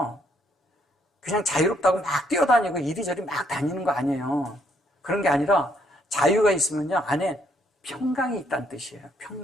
그냥 자유롭다고 막 뛰어다니고 이리저리 막 다니는 거 아니에요. 그런 게 아니라 자유가 있으면요, 안에 평강이 있다는 뜻이에요.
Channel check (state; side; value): normal; both; correlation 0.70